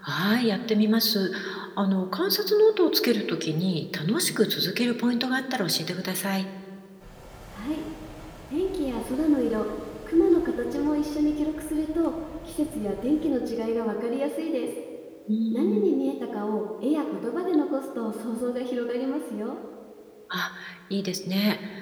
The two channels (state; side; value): identical; both; correlation 1.00